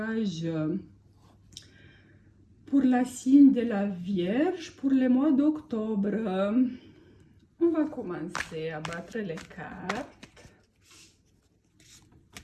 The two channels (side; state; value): both; identical; correlation 1.00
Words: pour la signe de la Vierge pour le mois d'octobre. On va commencer à battre les cartes.